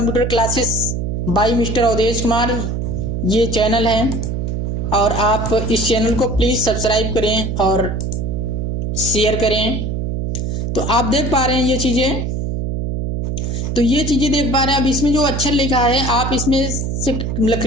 classes by mister Awadhesh Kumar, ये चैनल है। और आप इस चैनल को प्लीज़ सब्सक्राइब करें और शेयर करें। तो आप देख पा रहे हैं ये चीज़ें, तो ये चीज़ें देख पा रहे हैं। अब इसमें जो अक्षर लिखा है आप इसमें से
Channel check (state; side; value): noise; right; hum, 1 dB below the sound